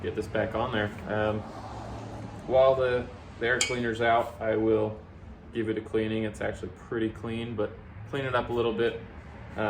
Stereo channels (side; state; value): both; identical; correlation 1.00